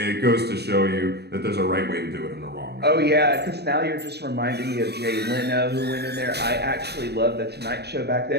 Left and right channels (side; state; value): left; late; 0.48 ms